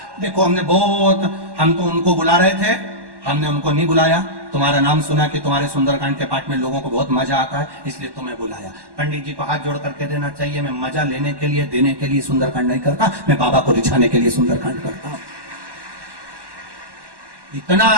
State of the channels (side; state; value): left; late; 1.1 ms